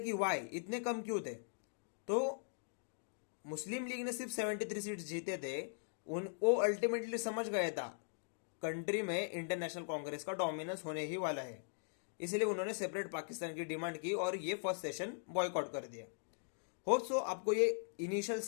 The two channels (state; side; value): silent; right; digital silence